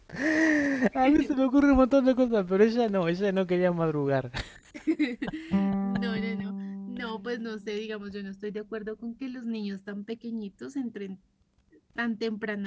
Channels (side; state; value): both; identical; correlation 1.00